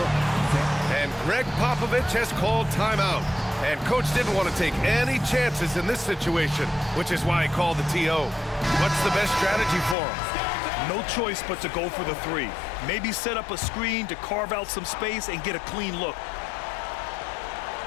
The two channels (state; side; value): drops out; right; at 10.0 s